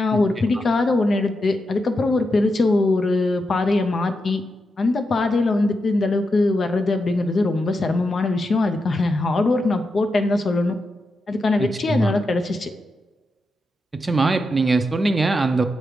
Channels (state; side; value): normal; both; correlation 0.87